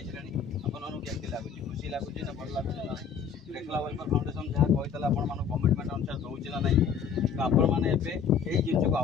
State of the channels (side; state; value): right; quieter; 6.9 dB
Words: आपको केमती लगुच खुशी लगुच ना भल लगुच ना रेखला वेलफेयर फाउंडेशन जहाँ कहता आप कमिटमेंट अनुसार दूसरी ना ना तो आपण मैंने यही जिन को